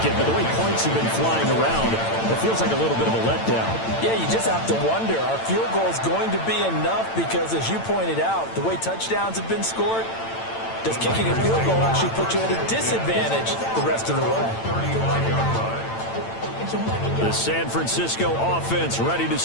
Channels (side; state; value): right; late; 8.9 ms